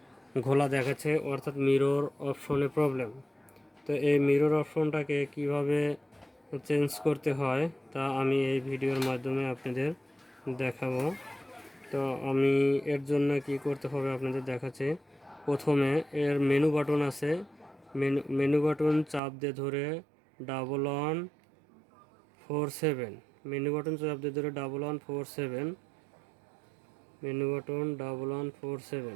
ঘোলা দেখাচ্ছে, অর্থাৎ মিরর অপশনে প্রবলেম। তো এই মিরর অপশনটাকে কিভাবে চেঞ্জ করতে হয় তা আমি এই ভিডিওর মাধ্যমে আপনাদের দেখাবো। তো আমি এর জন্য কি করতে হবে আপনাদের দেখাচ্ছি। প্রথমে এর মেনু বাটন আছে, মেনু বাটন চাপ দিয়ে ধরে 1147, মেনু বাটন চাপ দিয়ে ধরে 1147, মেনু বাটন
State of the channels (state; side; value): drops out; left; at 19.2 s